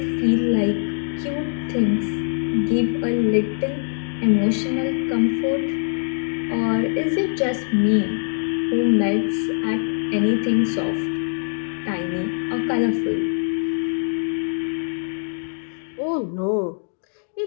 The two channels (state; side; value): silent; right; digital silence